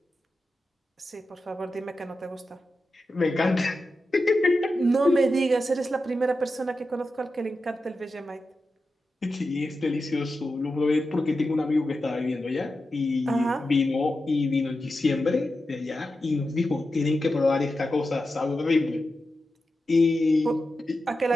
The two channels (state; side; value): normal; both; correlation 0.91